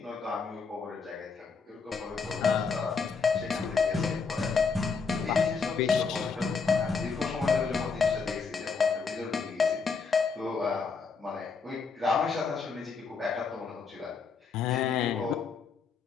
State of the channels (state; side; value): quieter; right; 5.2 dB